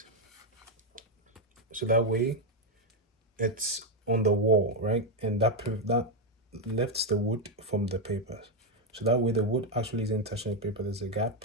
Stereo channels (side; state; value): both; normal; correlation 0.04